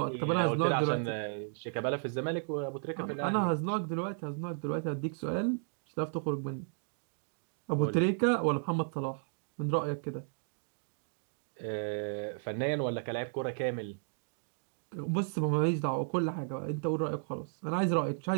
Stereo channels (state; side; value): silent; left; digital silence